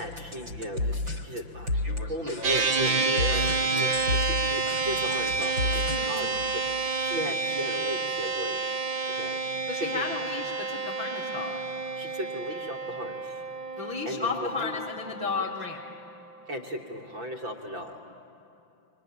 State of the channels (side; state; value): left; late; 5.9 ms